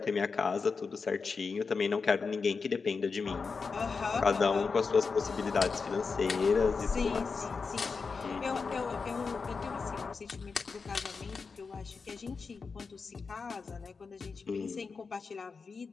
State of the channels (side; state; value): right; quieter; 4.9 dB